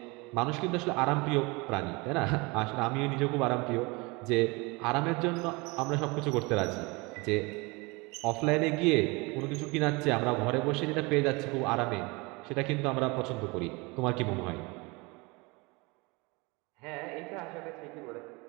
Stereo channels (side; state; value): left; quieter; 26.1 dB